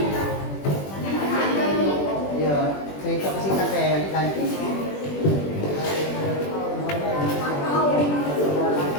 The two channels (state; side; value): late; right; 21 ms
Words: Ya, cerita singkat saya ganti.